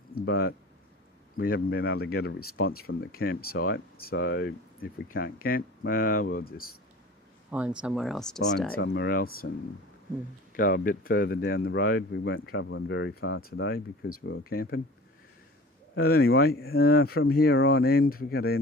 but we haven't been able to get a response from the campsite. So if we can't camp, well, we'll just Find somewhere else to stay. Find somewhere else and go a bit further down the road. We weren't travelling very far today because we were camping. But anyway, from here on end, we've got to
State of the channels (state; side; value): normal; both; correlation 0.41